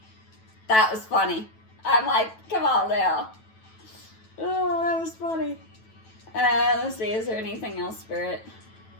That was funny. I'm like, come on now. Oh, that was funny. Let's see, is there anything else, Spirit?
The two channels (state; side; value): late; right; 9.2 ms